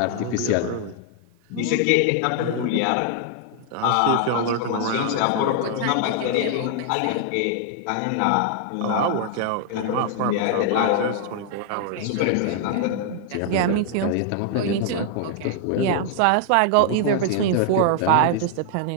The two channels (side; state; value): both; different; correlation 0.00